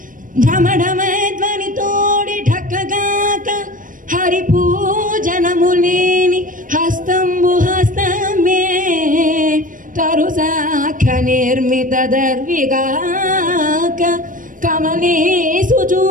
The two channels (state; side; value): late; left; 0.39 ms